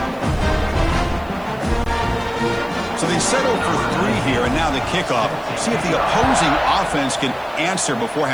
So they settle for 3 here, and now the kickoff. See if the opposing offense can answer before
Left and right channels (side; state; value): right; noise; hiss, 28 dB below the sound